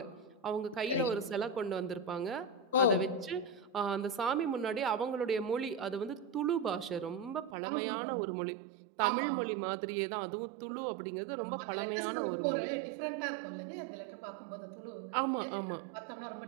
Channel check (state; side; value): drops out; left; at 7.6 s